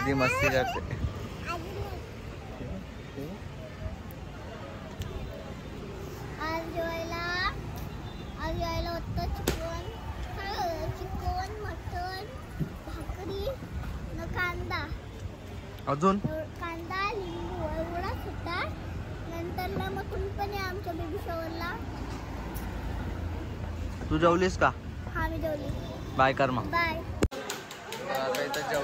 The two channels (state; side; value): identical; both; correlation 1.00